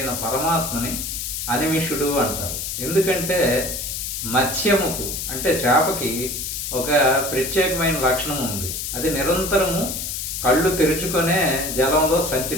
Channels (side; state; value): left; noise; hiss, 4 dB below the sound